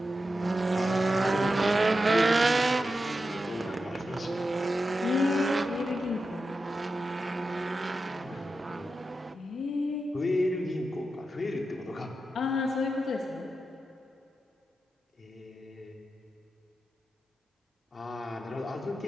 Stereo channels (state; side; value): normal; both; correlation 0.90